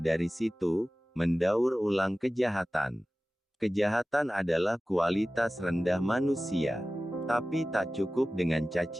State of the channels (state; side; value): normal; both; correlation 0.96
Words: dari situ, mendaur ulang kejahatan. Kejahatan adalah kualitas rendah manusia. Tapi tak cukup dengan